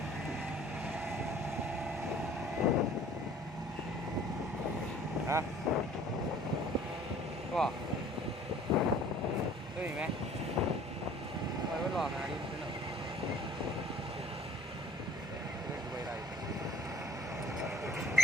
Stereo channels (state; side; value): normal; both; correlation 0.53